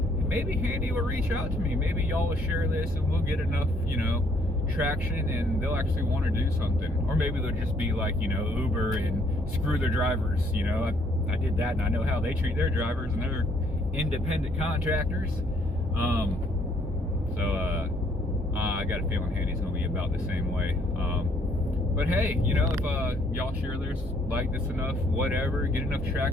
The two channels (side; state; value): both; normal; correlation 0.66